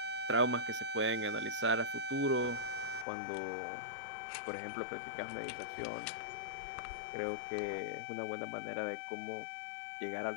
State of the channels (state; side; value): drops out; right; at 3.1 s